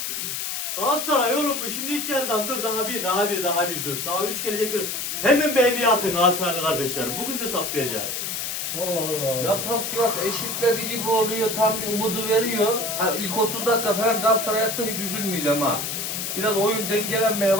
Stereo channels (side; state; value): left; noise; hiss, 3 dB below the sound